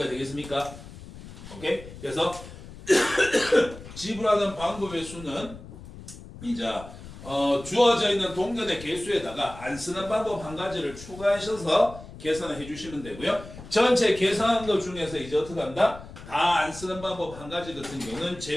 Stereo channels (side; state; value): left; noise; rumble, 15 dB below the sound